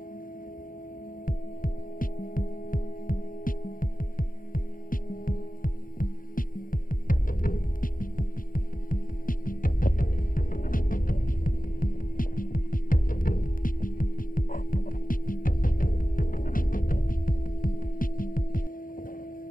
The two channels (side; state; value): right; late; 0.40 ms